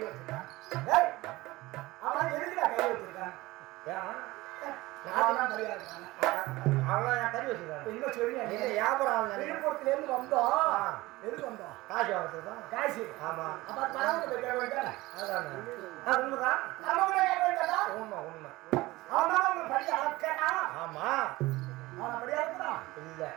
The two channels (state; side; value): quieter; left; 19.7 dB